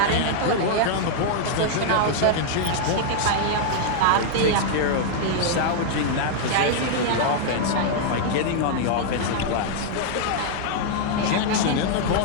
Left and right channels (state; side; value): different; both; correlation -0.01